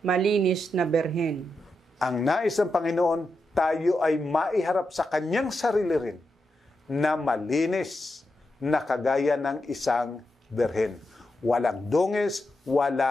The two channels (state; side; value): normal; both; correlation 0.86